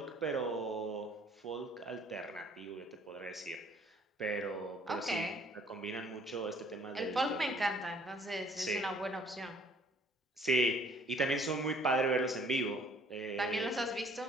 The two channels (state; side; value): normal; both; correlation 0.59